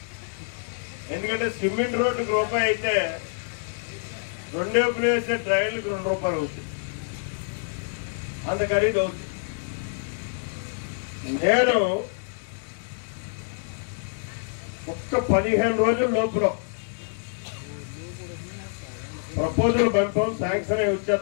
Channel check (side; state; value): right; silent; digital silence